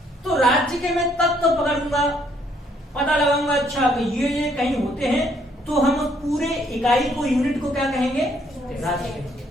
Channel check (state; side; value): normal; both; correlation 0.67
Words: तो राज्य के मैं तत्व तो पकड़ूंगा, पता लगाऊंगा अच्छा कि ये कहीं होते हैं, तो हम उस पूरे इकाई को, यूनिट को क्या कहेंगे? राज्य कहेंगे।